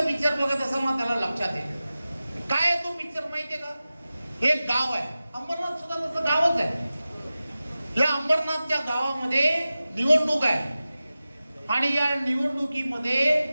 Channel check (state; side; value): inverted; both; correlation -0.95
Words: पिक्चर बघत असाल ना त्याला लक्षात येईल. काय आहे तो पिक्चर माहितीये का? एक गाव आहे, अंबरनाथ सुद्धा तसं गावच आहे. या अंबरनाथच्या गावामध्ये निवडणूक आहे आणि या निवडणुकीमध्ये